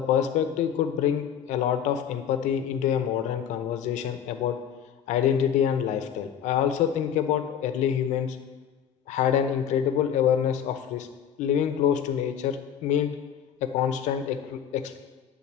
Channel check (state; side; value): quieter; right; 8.8 dB